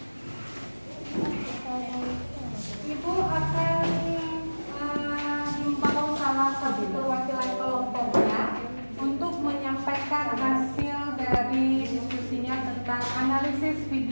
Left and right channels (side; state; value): both; inverted; correlation -1.00